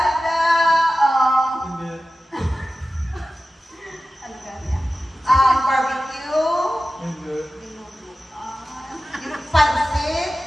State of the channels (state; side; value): normal; both; correlation 0.95